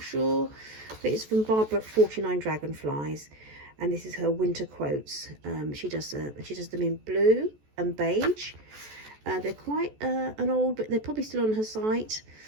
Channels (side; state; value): left; late; 14 ms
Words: sure, but it's from Barbara at 49 Dragonflies, and this is her winter quotes. She does them in blue and beige. They're quite an old, but they're probably still on her site.